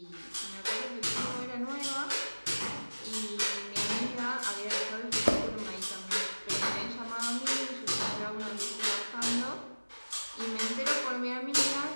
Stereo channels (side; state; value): both; inverted; correlation -1.00